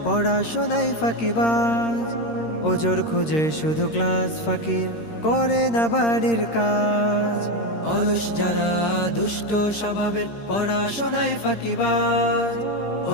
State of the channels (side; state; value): right; late; 13 ms